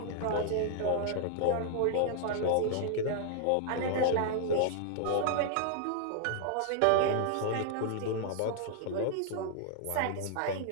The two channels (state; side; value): different; both; correlation -0.01